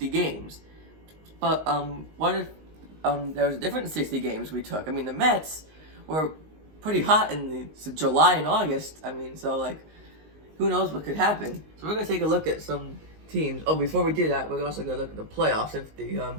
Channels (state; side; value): late; left; 19 ms